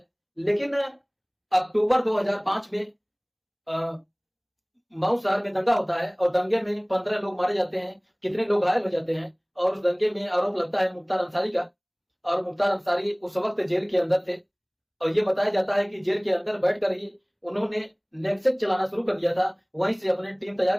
लेकिन अक्टूबर 2005 में मऊ शहर में दंगा होता है और दंगे में 15 लोग मारे जाते हैं, कितने लोग घायल हो जाते हैं। और उस दंगे में आरोप लगता है मुख्तार अंसारी का, और मुख्तार अंसारी उस वक्त जेल के अंदर थे। और ये बताया जाता है कि जेल के अंदर बैठकर ही उन्होंने नेक्सट चलाना शुरू कर दिया था। वहीं से अपने टीम तैयार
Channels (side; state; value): both; identical; correlation 1.00